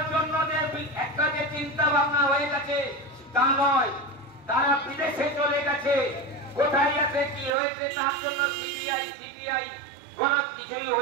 জন্য যে একটা যে চিন্তা ভাবনা হয়ে গেছে তা নয়। তারা বিদেশে চলে গেছে, কোথায় আছে কি হয়েছে তার জন্য সিবিআই কোন কিছুই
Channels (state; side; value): drops out; left; at 7.5 s